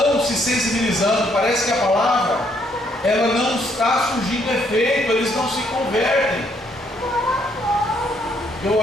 se sensibilizando, parece que a palavra, ela não está surgindo efeito, eles não se convertem. Eu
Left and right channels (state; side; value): normal; both; correlation 0.70